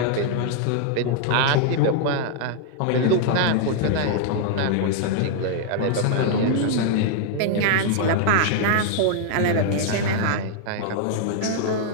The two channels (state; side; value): different; both; correlation -0.01